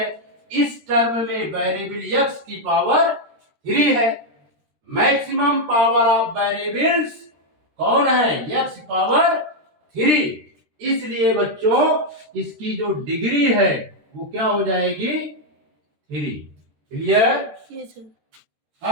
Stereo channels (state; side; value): late; left; 13 ms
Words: इस टर्म में वेरिएबल x की पावर 3 है। मैक्सिमम पावर ऑफ वेरिएबल्स कौन है? x power 3। इसलिए बच्चों इसकी जो डिग्री है वो क्या हो जाएगी? 3। क्लियर? Yes sir.